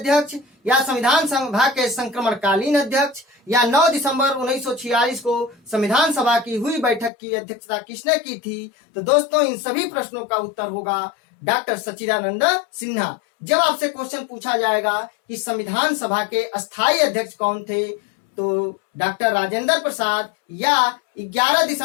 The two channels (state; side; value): drops out; right; at 7.1 s